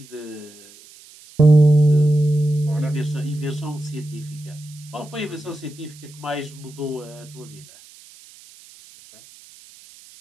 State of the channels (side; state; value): right; noise; hiss, 23 dB below the sound